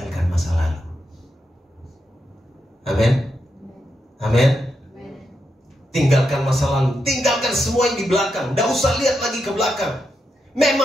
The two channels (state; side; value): normal; both; correlation 0.84